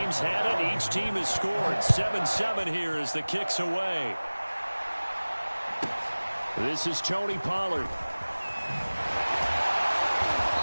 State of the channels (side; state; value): both; inverted; correlation -1.00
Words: had it. Each team has scored. 7-7 here as the kick's away. This is Tony Pollard.